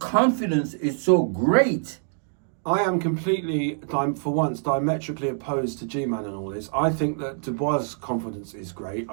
is so great. I am completely, for once, diametrically opposed to G-Man and all this. I think that Dubois' confidence is great.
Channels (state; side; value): silent; left; digital silence